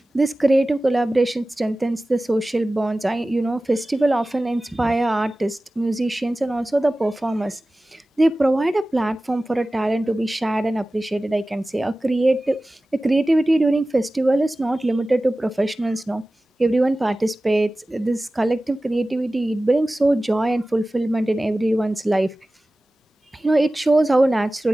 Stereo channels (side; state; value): both; normal; correlation 0.96